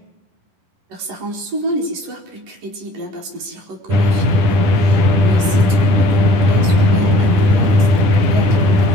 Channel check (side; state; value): left; late; 11 ms